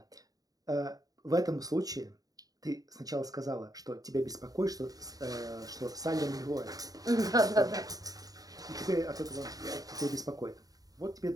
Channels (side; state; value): left; late; 0.18 ms